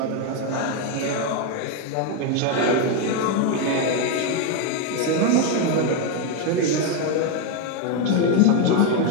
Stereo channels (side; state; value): both; different; correlation 0.02